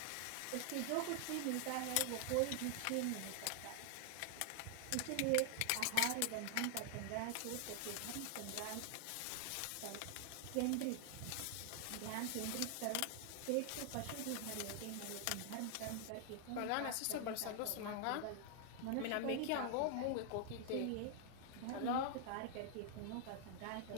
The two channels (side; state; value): both; different; correlation 0.00